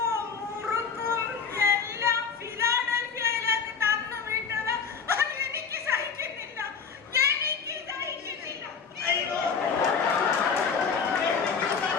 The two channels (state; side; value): quieter; right; 5.9 dB